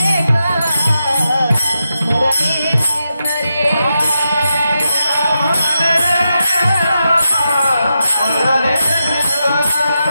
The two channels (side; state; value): both; inverted; correlation -0.87